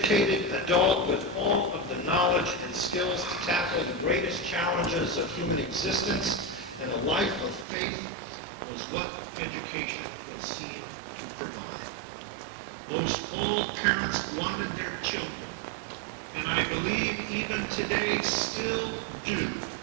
adult with all of the knowledge and skills to tackle the greatest challenges of human existence, and a life of faith was what education was seen to provide. Most all parents wanted their children, and I believe even today still do.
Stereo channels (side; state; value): left; drops out; at 7.7 s